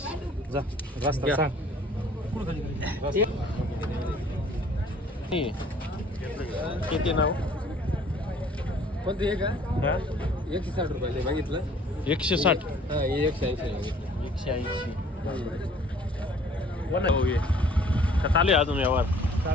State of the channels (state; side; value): normal; both; correlation 0.55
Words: जा रस्ता सांग. कुठं खाली गाडी? किती नाव? कोणती आहे का? हा? 160 रुपये बघितलं. 160. हा 180 180. हो ये का चालू आहे अजून व्यवहार?